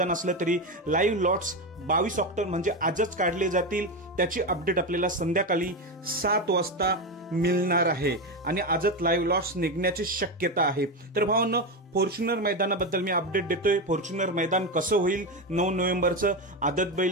असलं तरी लाईव्ह लॉट्स 22 ऑक्टोबर म्हणजे आजच काढले जातील। त्याची अपडेट आपल्याला संध्याकाळी 7 वाजता मिळणार आहे आणि आजच लाईव्ह लॉट्स निघण्याची शक्यता आहे। तर भावांनो, फॉर्च्युनर मैदानाबद्दल मी अपडेट देतोय। फॉर्च्युनर मैदान कसं होईल 9 नोव्हेंबरचं, आदत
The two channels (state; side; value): normal; both; correlation 0.14